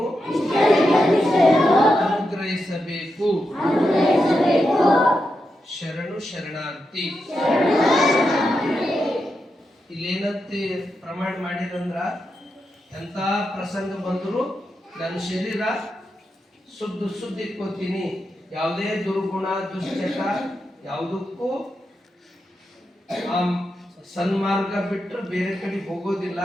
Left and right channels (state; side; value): normal; both; correlation 0.86